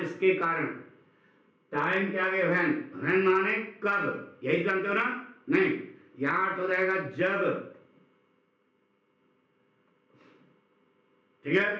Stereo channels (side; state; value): both; identical; correlation 1.00